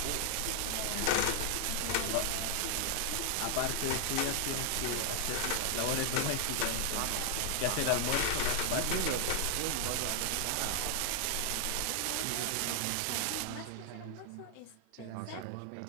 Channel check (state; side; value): different; both; correlation 0.00